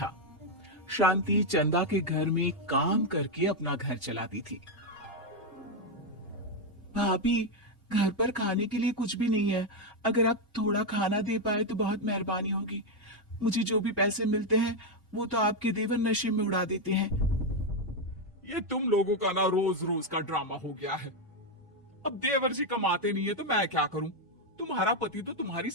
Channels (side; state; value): both; normal; correlation 0.04